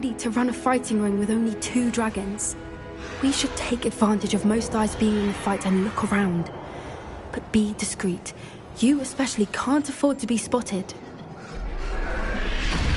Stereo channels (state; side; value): identical; both; correlation 1.00